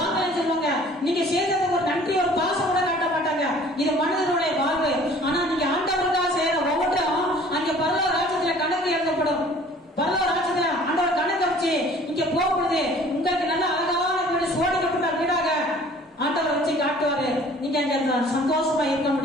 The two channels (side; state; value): both; normal; correlation 0.51